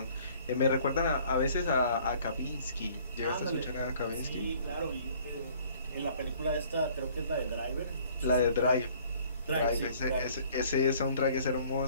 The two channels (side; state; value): both; inverted; correlation -0.56